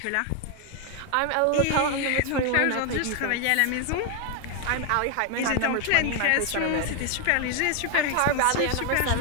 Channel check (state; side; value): different; both; correlation 0.01